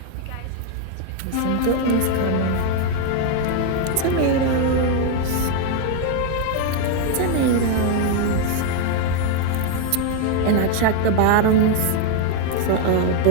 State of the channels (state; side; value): different; both; correlation 0.01